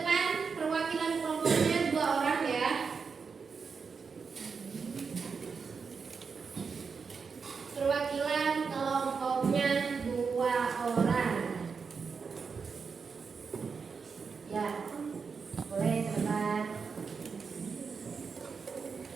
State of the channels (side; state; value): left; quieter; 5.4 dB